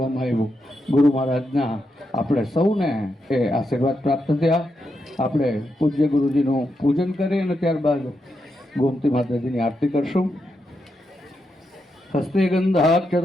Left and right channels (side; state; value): both; normal; correlation 0.84